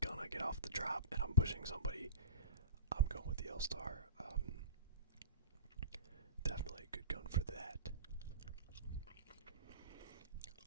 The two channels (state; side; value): inverted; both; correlation -0.32